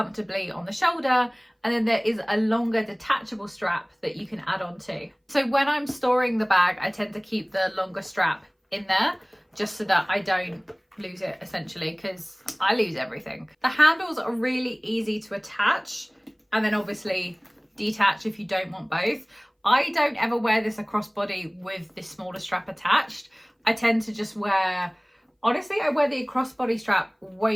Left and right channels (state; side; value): identical; both; correlation 1.00